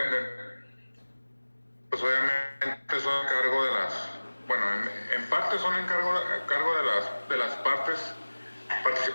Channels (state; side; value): inverted; both; correlation -1.00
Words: pues obviamente son a cargo de las, bueno, en parte son a cargo de las partes